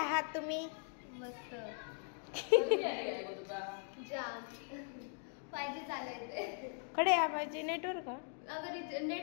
तुम्ही? मस्त. जाम 5G चालायचंय. कडे या 5G नेटवर्क का? अगर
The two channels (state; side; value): silent; right; 51 dB below the other